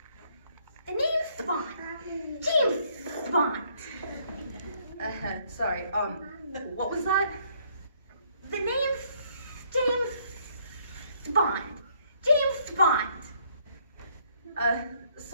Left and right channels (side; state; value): both; inverted; correlation -0.67